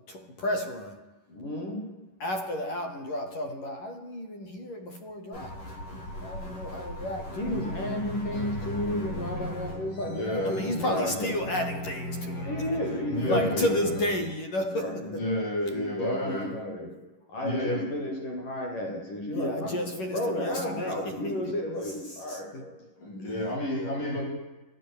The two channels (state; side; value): late; right; 11 ms